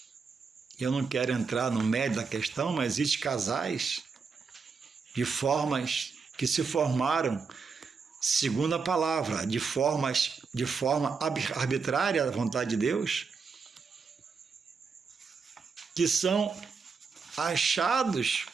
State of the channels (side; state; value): left; quieter; 5.2 dB